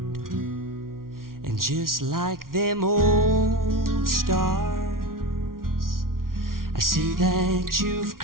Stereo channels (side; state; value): left; late; 0.92 ms